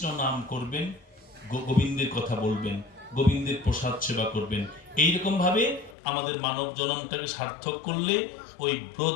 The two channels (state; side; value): drops out; right; at 6.0 s